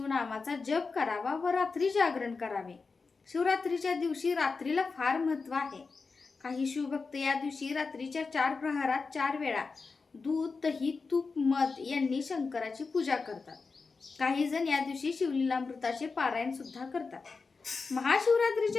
जप करावा व रात्री जागरण करावे. शिवरात्रीच्या दिवशी रात्रीला फार महत्त्व आहे. काही शिवभक्त या दिवशी रात्रीच्या 4 प्रहरात 4 वेळा दूध, दही, तूप, मध यांनी शंकराची पूजा करतात. काही जण या दिवशी शिवलीलामृताचे पारायण सुद्धा करतात.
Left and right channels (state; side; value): quieter; right; 4.5 dB